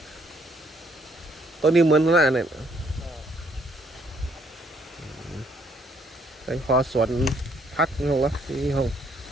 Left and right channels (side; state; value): both; normal; correlation 0.67